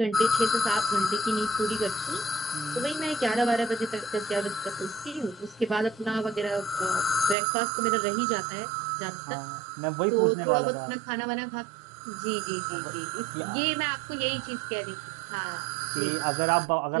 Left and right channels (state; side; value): drops out; left; at 7.4 s